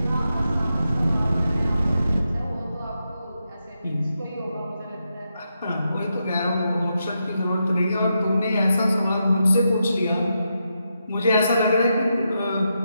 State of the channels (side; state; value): both; inverted; correlation -0.85